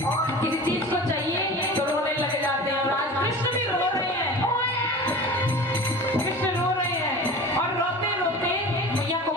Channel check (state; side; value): normal; both; correlation 0.36